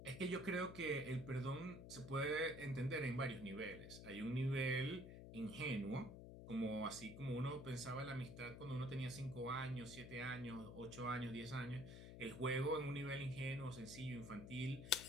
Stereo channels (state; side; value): noise; left; hum, 11 dB below the sound